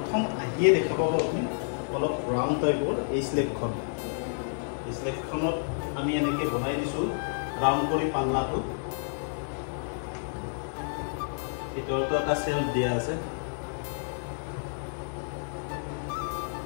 আহিয়ে দেখা পাব আপুনি অলপ ৰাউণ্ড টাইপৰ এই স্লেবখনত আমি এনেকৈ বনাই দিছো ৰাউণ্ড কৰি পাল্লাটো ভিতৰতো এটা সেলফ দিয়া আছে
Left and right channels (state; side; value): silent; right; digital silence